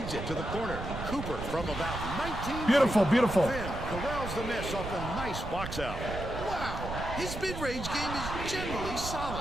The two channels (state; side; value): noise; right; rumble, 7 dB below the sound